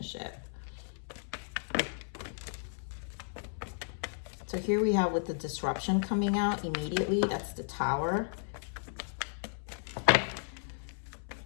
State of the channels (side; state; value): right; silent; 55 dB below the other